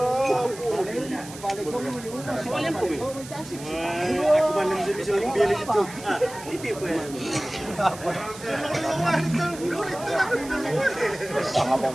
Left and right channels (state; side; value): noise; right; hiss, 15 dB below the sound